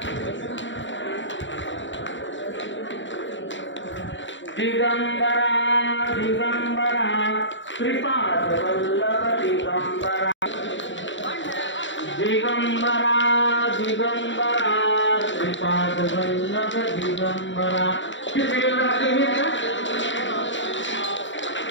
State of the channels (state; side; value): late; right; 0.55 ms